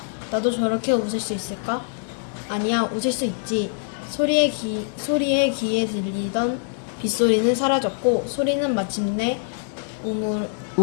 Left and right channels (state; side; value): silent; right; 63 dB below the other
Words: 나도 저렇게 웃을 수 있을까? 아니야, 웃을 수 있지. 소리의 귀에 들리던 빗소리는 사라졌고 소리는 마침내